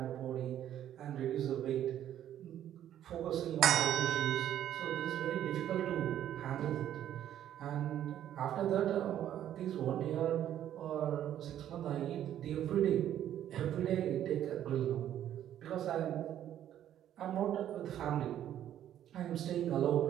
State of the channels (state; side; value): quieter; left; 11.1 dB